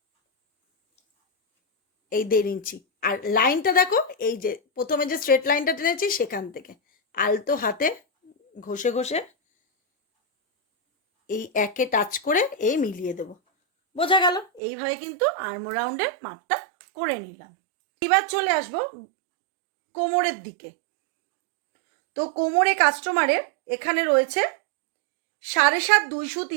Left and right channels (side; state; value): left; drops out; at 14.6 s